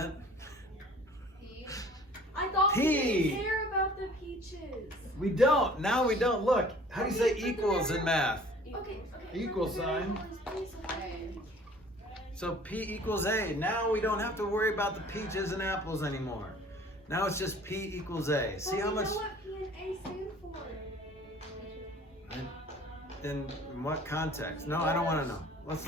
I thought we P. didn't care about the peaches. We don't. Now we don't. Look, how do you say equals in math? Okay. Equal sign. Okay. So P equals A. Now we don't have to worry about the peaches and apples anymore. Now it's just P equals A. See how much? know what P and A stand for? In what context? No, I don't want to know. Let's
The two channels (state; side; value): normal; both; correlation 0.50